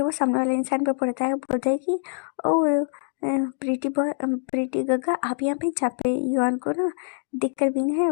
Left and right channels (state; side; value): silent; right; digital silence